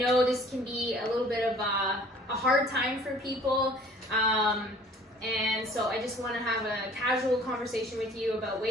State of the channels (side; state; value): both; normal; correlation 0.52